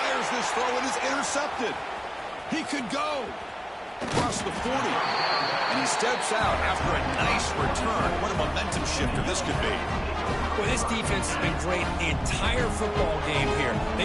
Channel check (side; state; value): both; identical; correlation 1.00